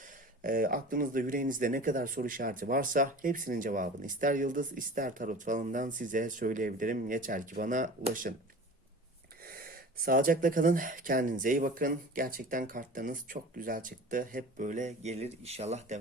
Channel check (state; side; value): normal; both; correlation 0.38